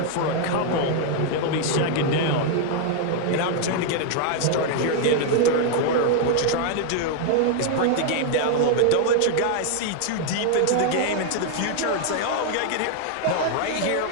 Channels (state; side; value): different; both; correlation 0.00